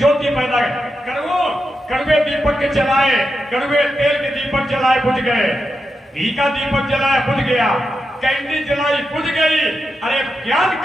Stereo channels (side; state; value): both; normal; correlation 0.87